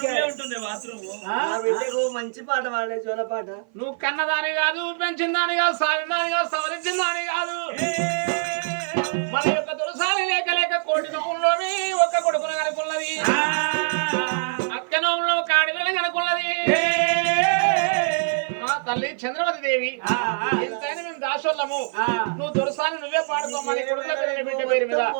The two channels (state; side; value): silent; left; 55 dB below the other